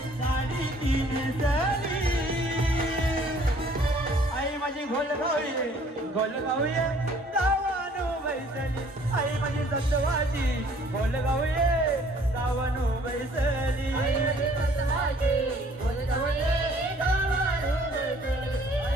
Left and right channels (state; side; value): normal; both; correlation 0.57